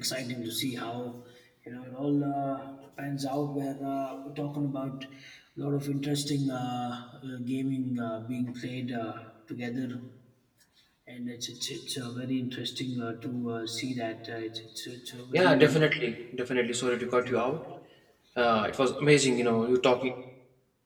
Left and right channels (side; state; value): both; identical; correlation 1.00